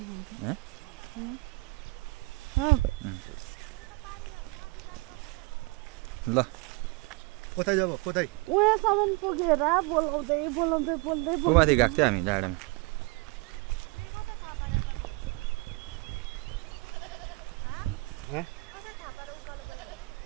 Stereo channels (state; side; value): quieter; left; 25.3 dB